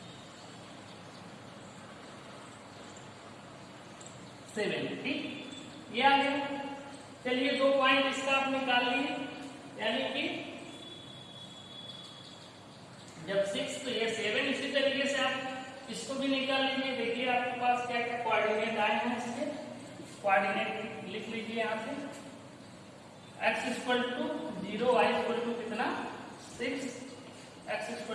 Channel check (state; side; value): identical; both; correlation 1.00